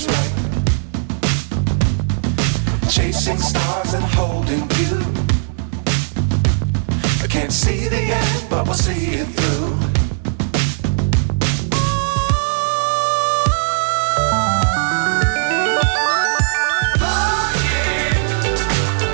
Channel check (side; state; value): left; silent; digital silence